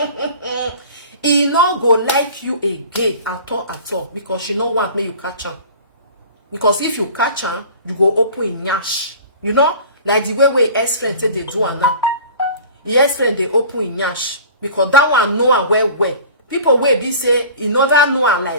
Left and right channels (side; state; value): both; inverted; correlation -0.42